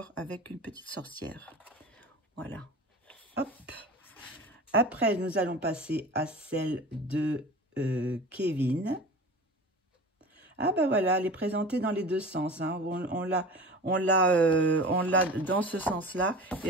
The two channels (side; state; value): both; normal; correlation 0.36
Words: avec une petite sorcière. Voilà. Hop. Après, nous allons passer à celle de Kevin. Ah, ben voilà, elle est présentée dans les deux sens. Hein. On l'a dans ce sens-là et